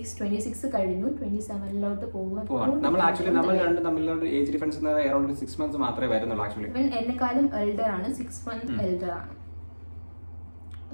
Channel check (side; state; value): both; inverted; correlation -1.00